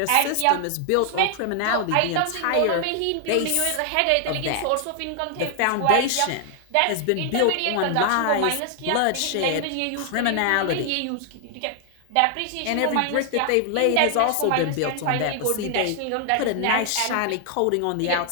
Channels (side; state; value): both; different; correlation 0.00